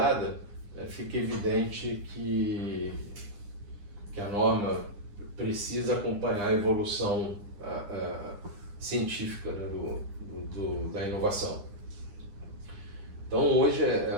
fica evidente que a norma precisa acompanhar a evolução científica, né, da inovação. Então hoje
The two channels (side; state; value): left; late; 9.9 ms